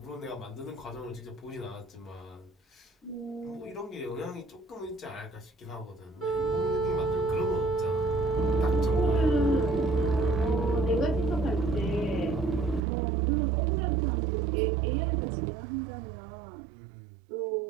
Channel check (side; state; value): left; drops out; at 12.8 s